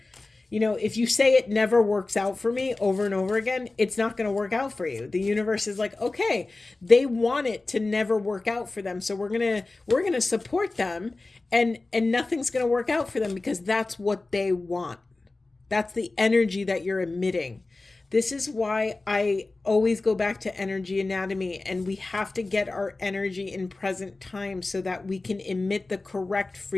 If you say it never works out for me over and over again, it's not going to work out for you. The universe is like, okay, they want it to never work out for them. So we're going to support them, and nothing's going to work out for them because that's what they want. That's the energy that you're emitting. This is why I always go back to energy anatomy, and we have to get our energy in present time so that we can emit the correct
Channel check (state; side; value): quieter; right; 3.3 dB